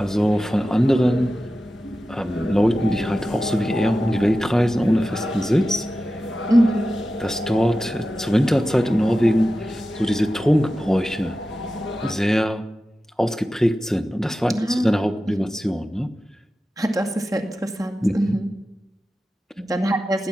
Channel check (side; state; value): both; normal; correlation 0.93